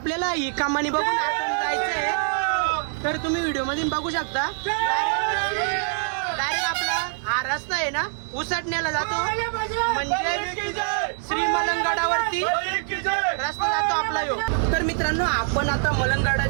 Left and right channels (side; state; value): left; silent; 62 dB below the other